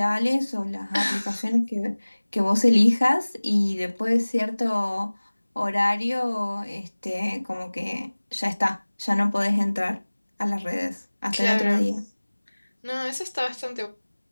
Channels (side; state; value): both; inverted; correlation -1.00